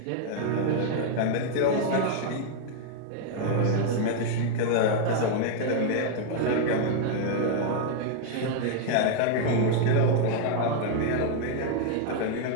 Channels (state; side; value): different; both; correlation 0.00